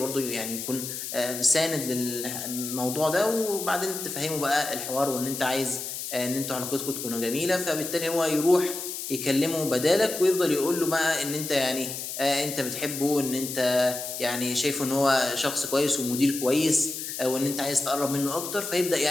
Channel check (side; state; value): left; noise; hiss, 6 dB below the sound